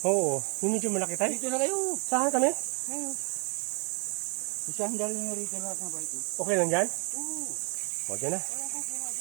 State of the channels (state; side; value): quieter; left; 33.7 dB